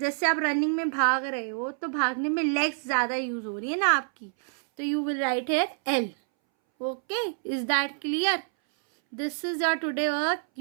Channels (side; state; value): left; silent; 60 dB below the other